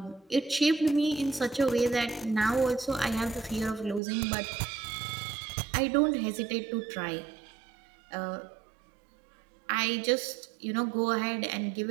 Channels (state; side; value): drops out; left; at 4.0 s